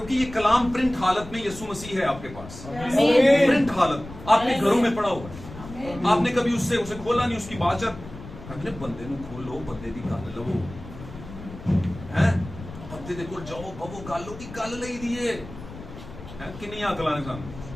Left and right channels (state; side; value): noise; left; rumble, 14 dB below the sound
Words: ये कलाम प्रिंट हालत में यीशु मसीह है आपके पास, प्रिंट हालत आपके घरों में पड़ा हुआ है। आपने कभी उसे खोला नहीं, उसकी बाचत अपने बंदे ਨੂੰ खोलो, बंदे दी गल लवो हैं, बंदे दे कोल जाओ, बवो गल की गल लई दिए हैं। किन्नी अकलां ने सानू